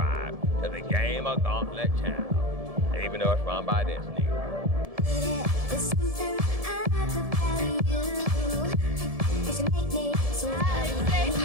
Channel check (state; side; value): late; left; 1.7 ms